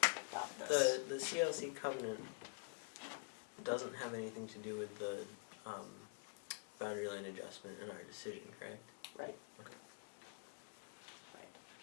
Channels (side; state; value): right; quieter; 38.6 dB